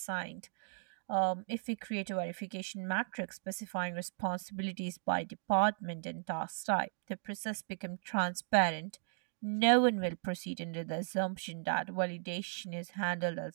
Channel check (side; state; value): left; silent; digital silence